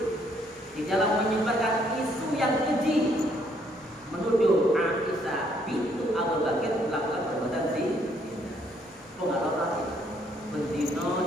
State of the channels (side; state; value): both; normal; correlation 0.68